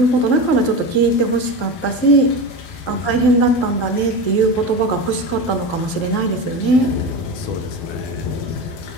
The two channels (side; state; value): right; late; 11 ms